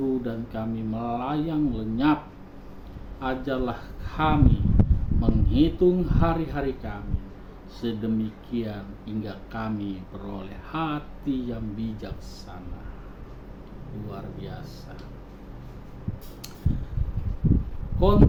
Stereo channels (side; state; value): both; identical; correlation 1.00